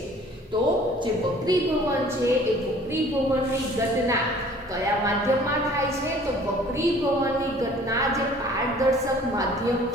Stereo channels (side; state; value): both; normal; correlation 0.52